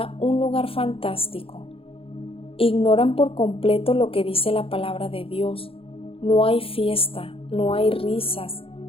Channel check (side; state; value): right; late; 0.27 ms